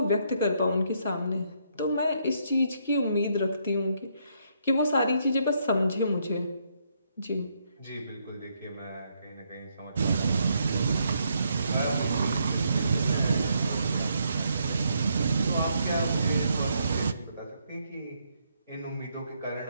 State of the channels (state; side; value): inverted; both; correlation -0.74